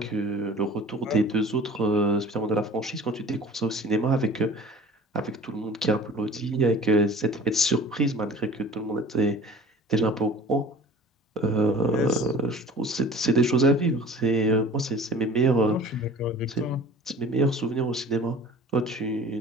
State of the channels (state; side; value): normal; both; correlation 0.42